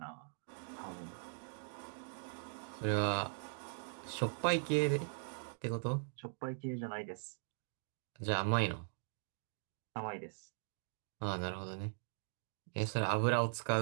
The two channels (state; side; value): silent; left; digital silence